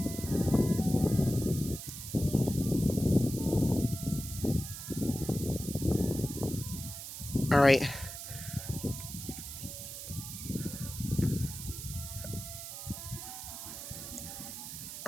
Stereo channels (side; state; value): right; noise; hiss, 9 dB below the sound